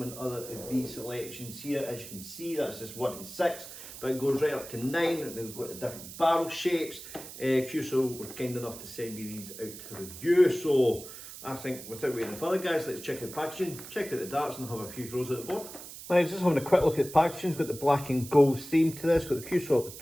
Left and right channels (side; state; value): right; noise; hiss, 13 dB below the sound